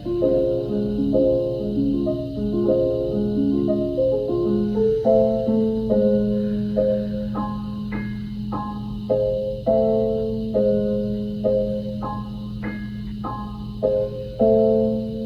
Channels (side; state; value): both; identical; correlation 1.00